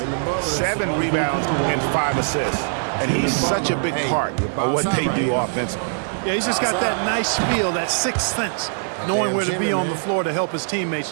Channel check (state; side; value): silent; left; digital silence